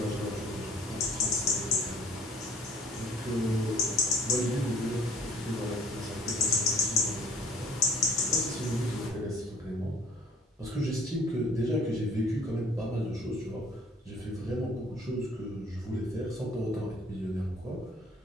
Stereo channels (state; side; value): normal; both; correlation 0.56